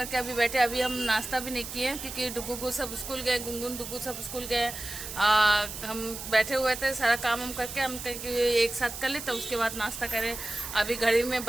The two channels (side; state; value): right; noise; hiss, 9 dB below the sound